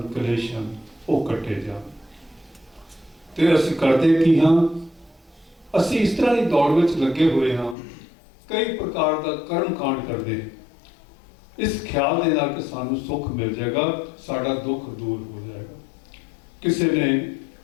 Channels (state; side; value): drops out; right; at 7.8 s